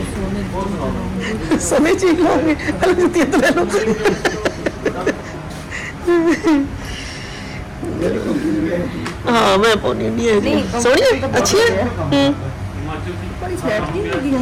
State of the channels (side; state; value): both; identical; correlation 1.00